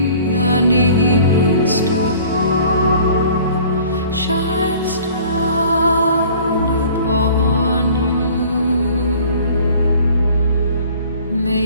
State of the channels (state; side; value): inverted; both; correlation -0.50